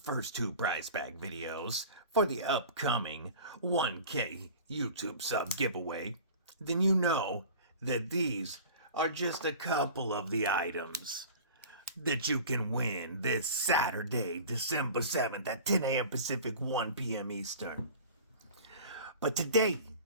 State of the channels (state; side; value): inverted; both; correlation -0.40